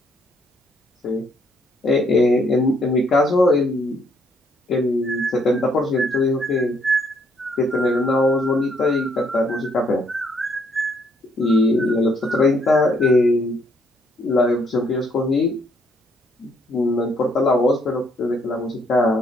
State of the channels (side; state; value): both; normal; correlation 0.69